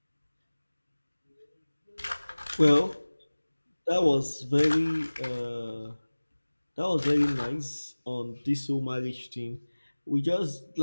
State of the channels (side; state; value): both; inverted; correlation -1.00